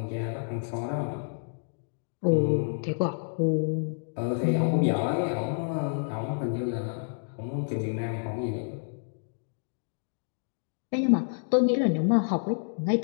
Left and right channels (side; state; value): right; silent; digital silence